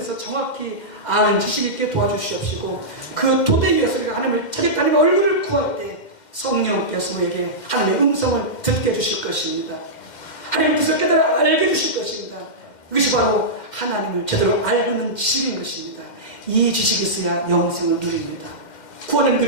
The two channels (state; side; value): late; right; 2.1 ms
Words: 정확히 아는 지식 있게 도와주시옵시고 그 토대 위에서 우리가 하나님을 찾겠다 하나님의 얼굴을 구할 때 성령께서 우리에게 하나님의 음성을 듣게 해주실 것입니다. 하나님의 뜻을 깨달아 알게 해주실 것입니다. 이것이 바로 하나님을 제대로 알고 있는 지식인 것입니다. 이 지식이 있어야 영생을 누립니다. 구원을